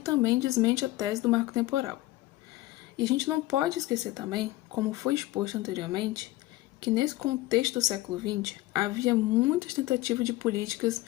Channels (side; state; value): right; quieter; 18.0 dB